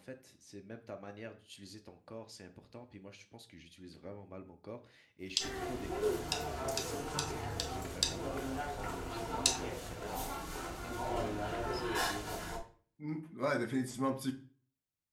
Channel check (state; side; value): identical; both; correlation 1.00